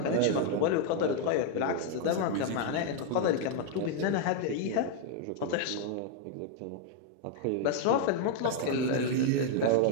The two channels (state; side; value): different; both; correlation 0.00